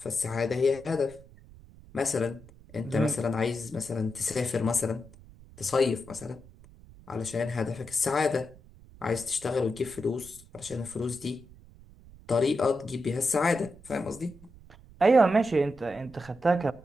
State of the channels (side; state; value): right; noise; rumble, 22 dB below the sound